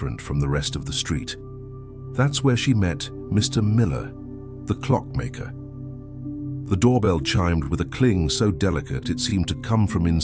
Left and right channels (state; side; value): identical; both; correlation 1.00